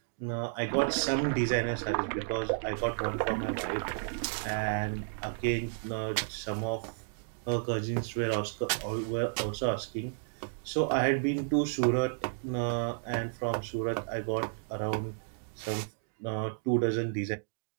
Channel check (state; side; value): silent; left; digital silence